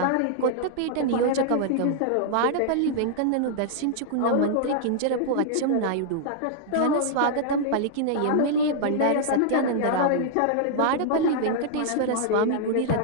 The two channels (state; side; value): different; both; correlation -0.01